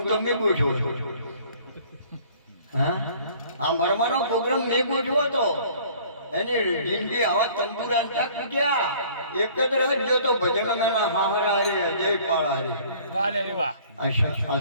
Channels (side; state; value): both; inverted; correlation -0.53